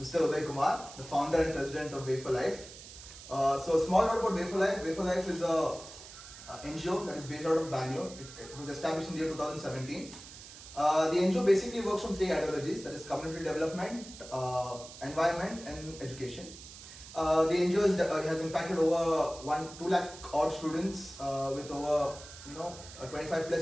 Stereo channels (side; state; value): right; noise; hiss, 15 dB below the sound